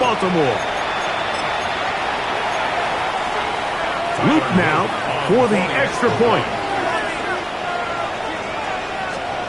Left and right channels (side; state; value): both; identical; correlation 1.00